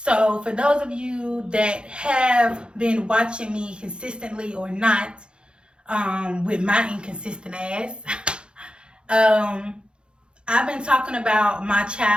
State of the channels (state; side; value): late; left; 0.053 ms